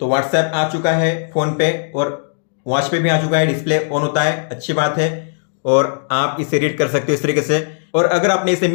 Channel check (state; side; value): silent; right; digital silence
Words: तो व्हाट्सएप आ चुका है फोन पे, और वॉच पे भी आ चुका है, डिस्प्ले ऑन होता है, अच्छी बात है। और आप इसे रीड कर सकते हो इस तरीके से। और अगर आपने इसे